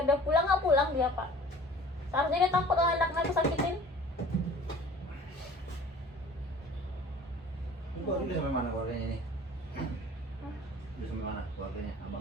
dia pulang, nggak pulang dia pak. Seharusnya dia takut kalau anaknya aku sakitin. Ibu udah sampai mana keluarganya nih? Udah sampai mana keluarganya?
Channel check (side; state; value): both; normal; correlation 0.47